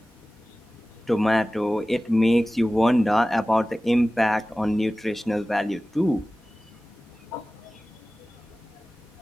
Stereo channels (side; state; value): both; normal; correlation 0.97